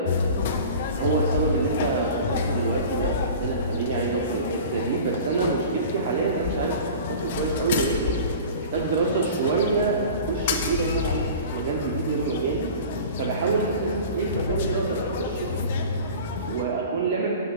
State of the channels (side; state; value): both; inverted; correlation -0.39